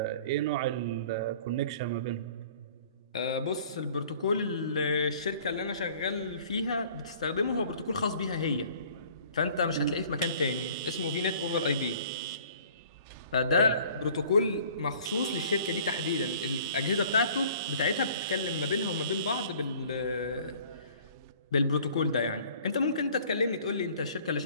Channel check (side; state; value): both; inverted; correlation -0.52